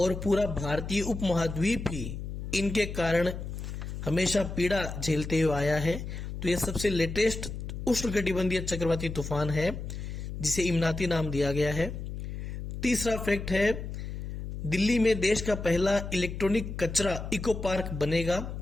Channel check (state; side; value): noise; left; hum, 7 dB below the sound